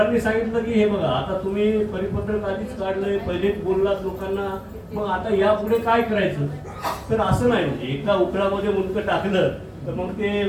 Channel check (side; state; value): both; identical; correlation 1.00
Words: सांगितलं की हे बघा, आता तुम्ही परिपत्रक आधीच काढलंय, पहिलेच बोललात लोकांना, मग आता यापुढे काय करायचं. तर असं नाही, म्हणजे एका उकळामध्ये मुंडकं टाकलं तर मग ते